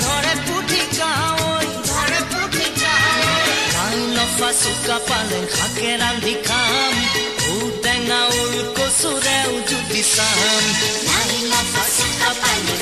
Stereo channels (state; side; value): identical; both; correlation 1.00